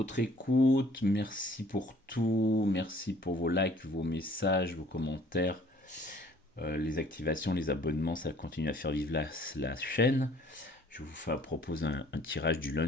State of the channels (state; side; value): normal; both; correlation 0.56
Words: écoute, merci pour tout, merci pour vos likes, vos messages, vos commentaires, les activations, les abonnements, ça continue à faire vivre la chaîne. Je vous propose un tirage du